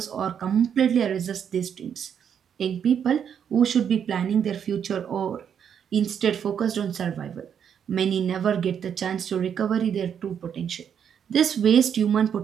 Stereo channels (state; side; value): quieter; left; 8.1 dB